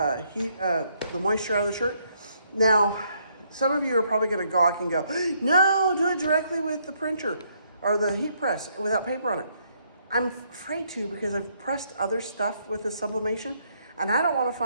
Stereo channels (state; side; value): inverted; both; correlation -0.71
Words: moisture out of the shirt. Now, some of you are probably gonna gawk and go, no, do it directly with the printer or the heat press without paper on it. I'm afraid to because I've pressed other stuff with the sublimation, and I don't wanna